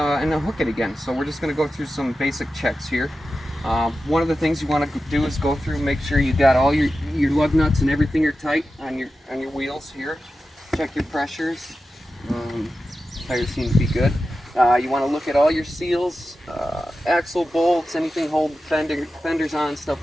hook it again. So we're just going to go through some basic checks here. One of the things you want to do is go through, make sure you got all your lug nuts and everything are tight on your wheels here. Check your pressures. Tires seem to be good. You want to look at all your seals, axle bolts, anything holding fenders on,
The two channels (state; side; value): normal; both; correlation 0.92